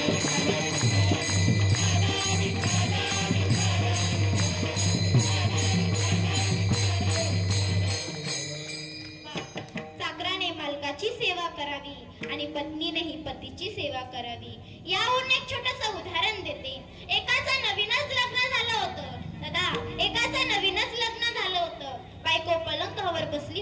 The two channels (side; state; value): both; identical; correlation 1.00